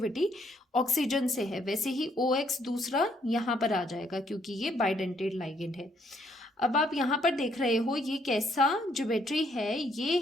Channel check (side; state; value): both; normal; correlation 0.69